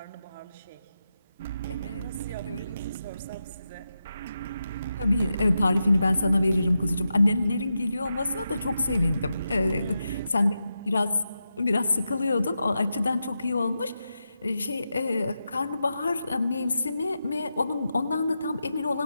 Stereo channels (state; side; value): inverted; both; correlation -0.88